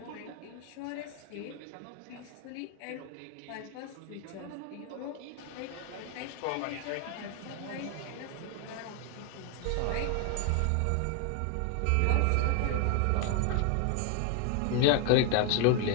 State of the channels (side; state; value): both; different; correlation 0.00